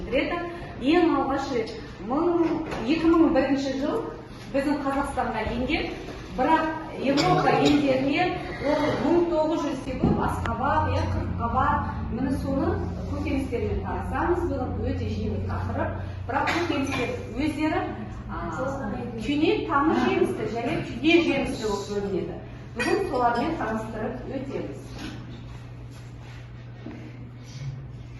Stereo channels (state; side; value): identical; both; correlation 1.00